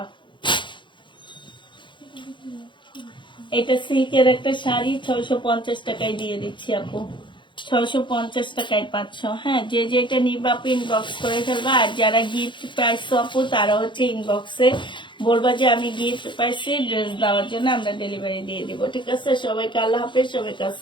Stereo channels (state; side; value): late; right; 0.23 ms